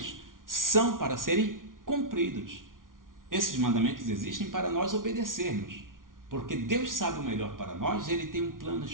são para serem cumpridos. Esses mandamentos existem para nós obedecermos. Porque Deus sabe o melhor para nós, Ele tem um plano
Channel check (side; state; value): left; late; 0.89 ms